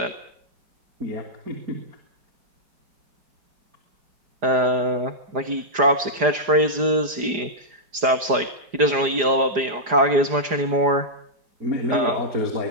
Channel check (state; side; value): late; left; 4.9 ms